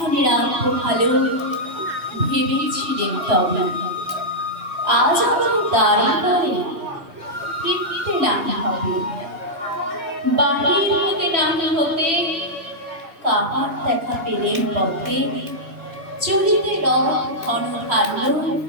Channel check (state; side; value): late; left; 3.0 ms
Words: আলো ভালো ভেবেছিলেন তবে আজ আমার দাঁড়িয়ে দাঁড়িয়ে ফিরতে না হবে। বাহির হতে না হতে কাহার দেখা পেলেন পথে। চলিতে রথ ঘন ধান্য